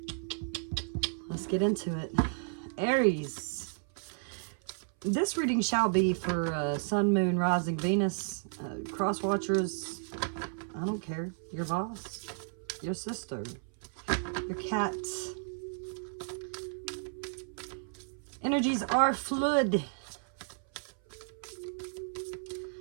Let's get into it. Aries, this reading shall be for Sun, Moon, Rising, Venus, cross watchers. I don't care. Your boss, your sister, your cat. Energies are fluid.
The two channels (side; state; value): left; silent; 56 dB below the other